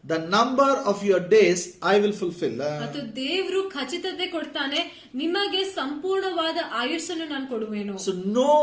the number of your days I will fulfill. ಮತ್ತು ದೇವರು ಖಚಿತತೆ ಕೊಡ್ತಾನೆ, ನಿಮಗೆ ಸಂಪೂರ್ಣವಾದ ಆಯುಷ್ಯನ್ನು ನಾನು ಕೊಡುವೆನು. So no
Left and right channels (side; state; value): both; identical; correlation 1.00